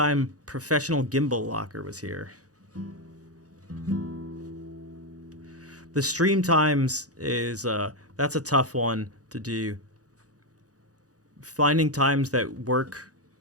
Professional Gimbal Locker was here? The stream times is that's a tough one to do. Finding times that work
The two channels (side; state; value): left; late; 0.67 ms